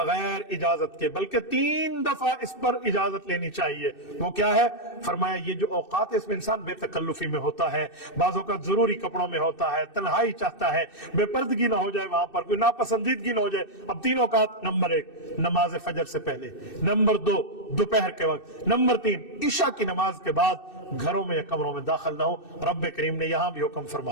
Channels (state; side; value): late; right; 2.6 ms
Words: इजाजत के, बल्कि 3 दफा इस पर इजाजत लेनी चाहिए। वो क्या है? फरमाया ये जो औकात है इसमें इंसान बेतकल्लुफी में होता है, बाज़ों का जरूरी कपड़ों में होता है, तन्हाई चाहता है, बेपर्दगी ना हो जाए, वहां पर कोई नापसंदीदगी ना हो जाए। अब 3 औकात, नंबर 1 नमाज फजर से पहले, नंबर 2 दोपहर के वक्त, नंबर 3 इशा की नमाज के बाद घरों में या कमरों में दाखिल ना हो। रब्बे करीम ने यहां भी हुक्म